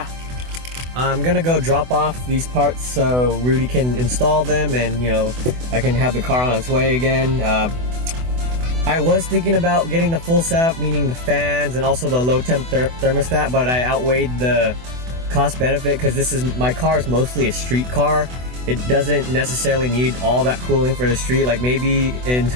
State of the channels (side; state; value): left; late; 24 ms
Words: I'm gonna go drop off these parts so Rudy can install them, and I can have the car on its way again. I was thinking about getting the full setup, meaning the fans and also the low temp thermostat, but I outweighed the cost benefit because my car is mostly a street car. It doesn't necessarily need all that cooling for the street. Like maybe in